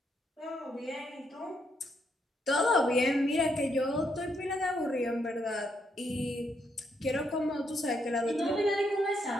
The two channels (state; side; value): normal; both; correlation 0.77